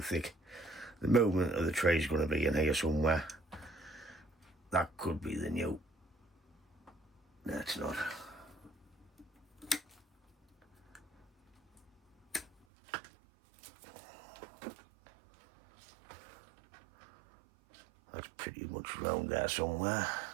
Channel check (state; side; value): drops out; left; at 12.5 s